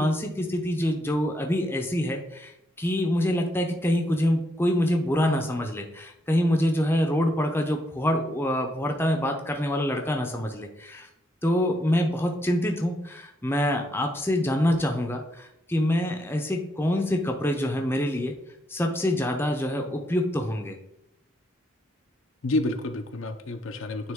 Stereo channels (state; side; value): normal; both; correlation 0.77